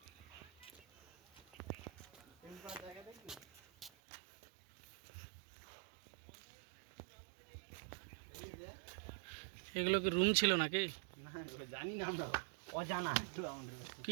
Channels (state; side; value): drops out; left; at 3.9 s